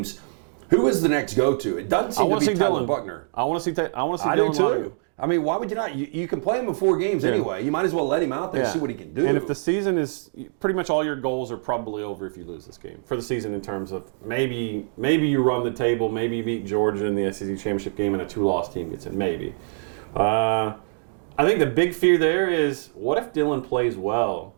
Who is the next go-to? It doesn't seem to be Tyler Buckner. I want to see Dylan. I do too. I mean, why would you not? You can play him in 4 games anyway. You might as well let him out there and see what he can do. And if the season is pretty much all your goals are probably over if you lose this game for the season, in terms of maybe you run the table, maybe you beat Georgia in the SEC championship game and a 2-loss team gets in, maybe. I think the big fear there is, what if Dylan plays well,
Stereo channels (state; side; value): silent; left; digital silence